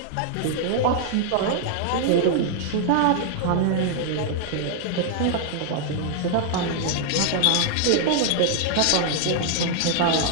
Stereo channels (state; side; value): different; both; correlation -0.01